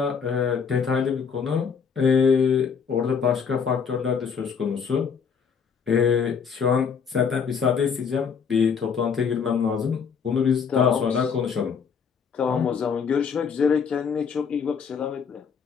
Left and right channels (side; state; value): right; quieter; 6.4 dB